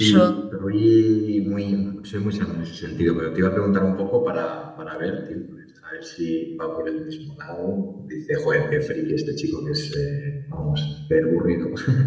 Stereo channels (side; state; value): both; identical; correlation 1.00